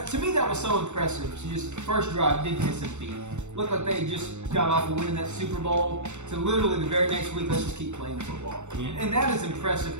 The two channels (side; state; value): left; late; 0.84 ms